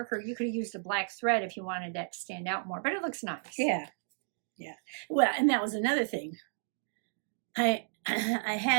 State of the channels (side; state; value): left; silent; digital silence